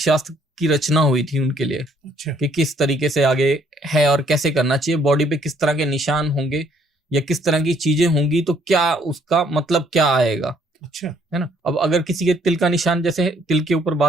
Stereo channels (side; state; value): both; normal; correlation 0.65